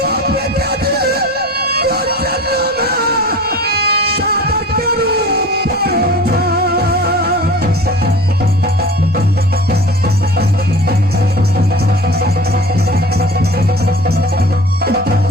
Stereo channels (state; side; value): normal; both; correlation 0.39